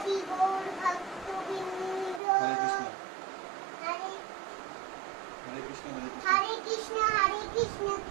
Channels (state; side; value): drops out; left; at 2.2 s